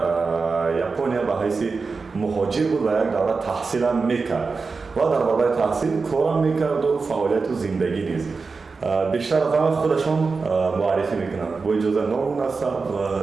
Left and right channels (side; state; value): left; quieter; 4.5 dB